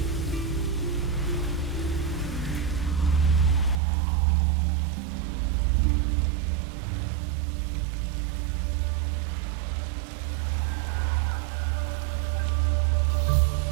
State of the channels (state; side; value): drops out; left; at 3.8 s